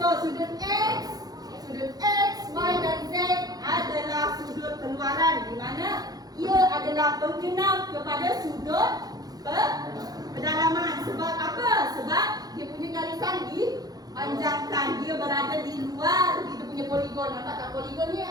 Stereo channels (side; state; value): left; late; 0.19 ms